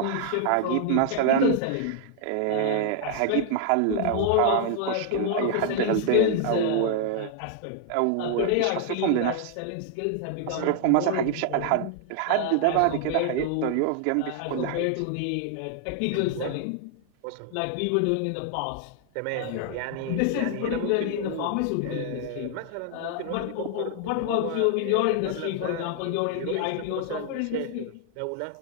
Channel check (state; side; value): different; both; correlation 0.00